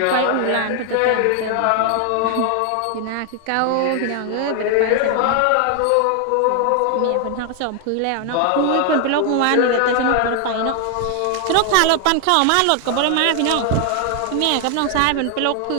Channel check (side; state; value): both; different; correlation 0.00